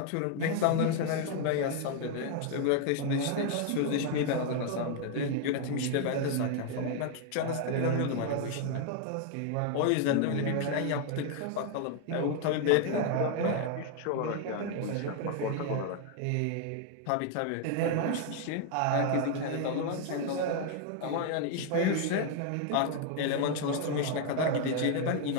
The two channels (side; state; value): both; different; correlation 0.00